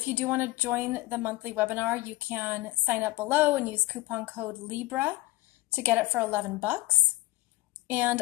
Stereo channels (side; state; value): right; quieter; 19.1 dB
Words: you do want to join the monthly webinar, you can sign up below and use coupon code Libra to get it for $11. And